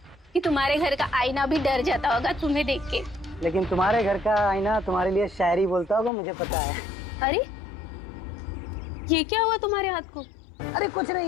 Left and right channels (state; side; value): drops out; right; at 6.1 s